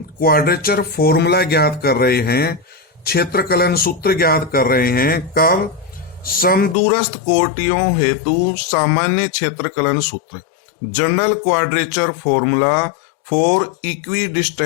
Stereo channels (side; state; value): right; drops out; at 6.8 s